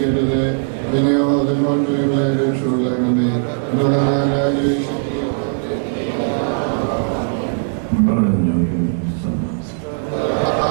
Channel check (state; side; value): silent; left; digital silence